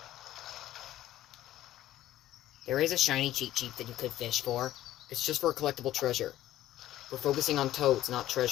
There is a shiny cheap cheap that you could fish for. It's just for a collectible treasure. We're focusing on toads, not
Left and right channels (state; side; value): quieter; right; 13.8 dB